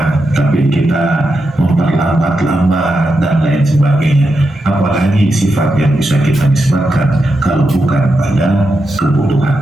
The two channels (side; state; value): both; normal; correlation 0.86